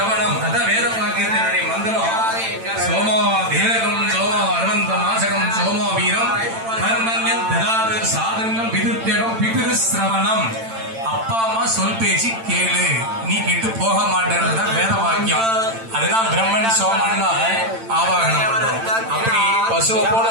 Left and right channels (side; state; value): left; late; 8.9 ms